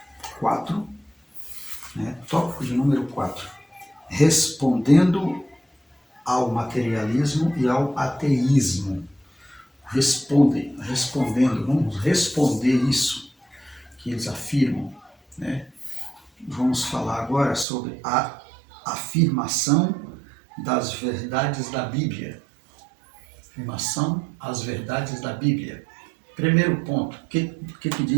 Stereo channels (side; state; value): left; drops out; at 17.7 s